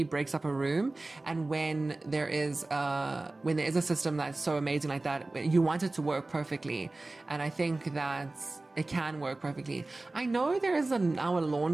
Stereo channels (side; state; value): left; quieter; 3.0 dB